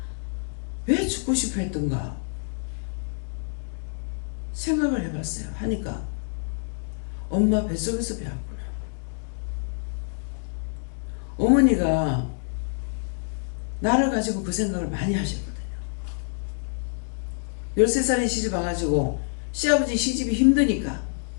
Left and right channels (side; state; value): right; silent; 60 dB below the other